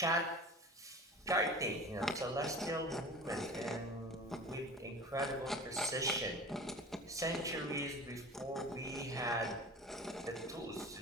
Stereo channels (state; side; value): normal; both; correlation 0.37